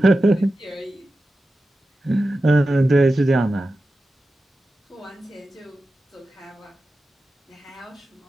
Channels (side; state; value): both; normal; correlation 0.93